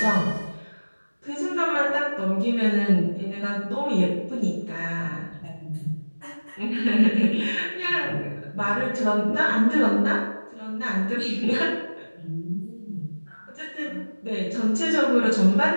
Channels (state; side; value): inverted; both; correlation -1.00